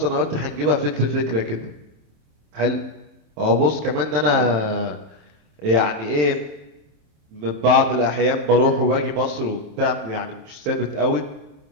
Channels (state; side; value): late; left; 27 ms